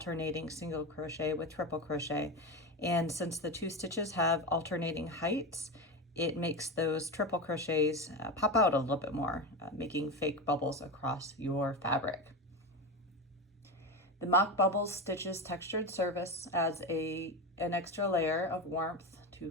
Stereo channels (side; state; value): both; normal; correlation 0.19